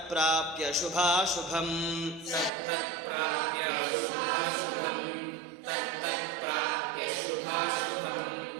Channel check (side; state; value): left; drops out; at 2.5 s